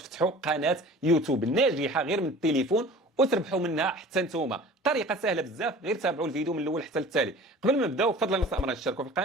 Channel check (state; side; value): normal; both; correlation 0.43